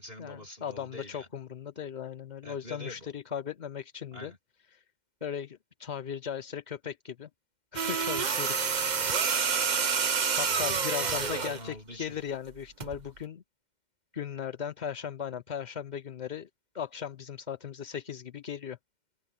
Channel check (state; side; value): late; left; 2.1 ms